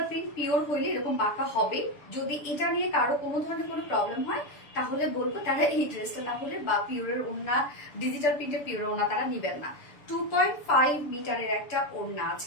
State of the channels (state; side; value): late; right; 6.8 ms